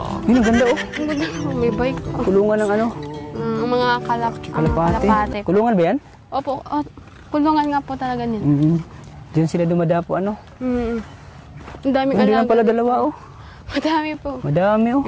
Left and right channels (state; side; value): identical; both; correlation 1.00